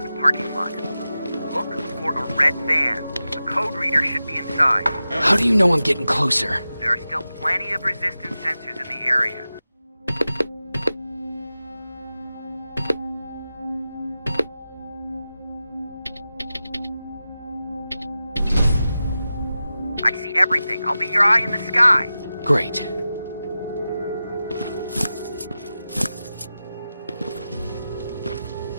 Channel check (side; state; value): both; inverted; correlation -0.93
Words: the parking lot. Look for a red van. The code reader should be inside. How do you know I'm getting closer? There are still plenty of resistance sensors in the area. I see everything. I'll be your eye in the sky. Great.